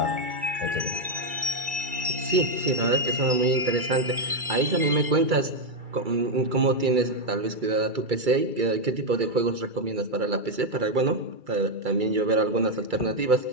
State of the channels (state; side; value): late; left; 2.3 ms